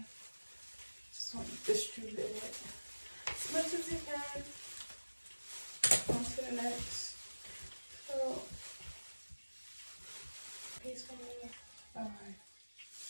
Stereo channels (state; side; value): inverted; both; correlation -1.00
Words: Just want to distribute it as much as you can. On to the next. So, piece for me. All right.